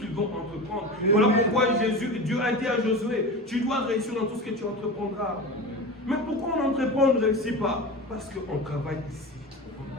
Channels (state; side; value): normal; both; correlation 0.28